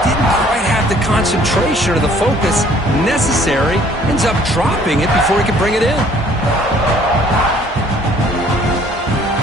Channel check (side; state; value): both; normal; correlation 0.58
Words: didn't quite have the concentration or the focus necessary. Ends up dropping it before he could bring it in.